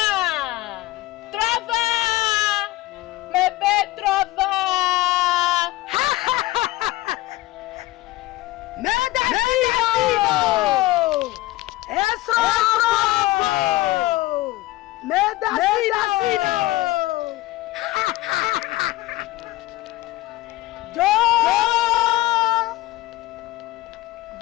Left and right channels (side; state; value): right; quieter; 18.0 dB